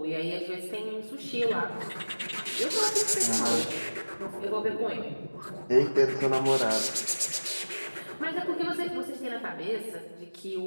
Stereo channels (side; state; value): both; inverted; correlation -1.00